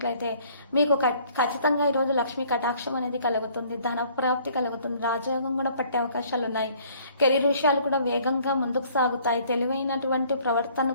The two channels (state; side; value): inverted; both; correlation -0.58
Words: మీకు ఖచ్చితంగా ఈ రోజు లక్ష్మీ కటాక్షం అనేది కలుగుతుంది. ధన ప్రాప్తి కలుగుతుంది. రాజయోగం కూడా పట్టే అవకాశాలు ఉన్నాయి. కెరీర్ విషయాలు కూడా వేగంగా ముందుకు సాగుతాయి. తెలివైనటువంటి ప్రవర్తన